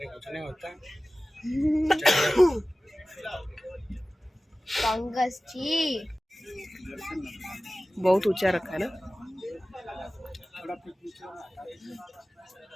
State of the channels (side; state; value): both; normal; correlation 0.97